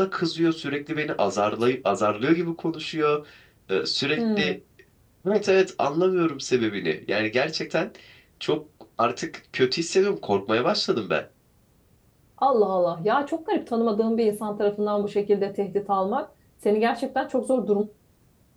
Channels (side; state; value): both; identical; correlation 1.00